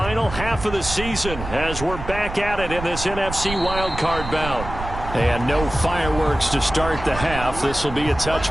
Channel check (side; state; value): right; noise; rumble, 9 dB below the sound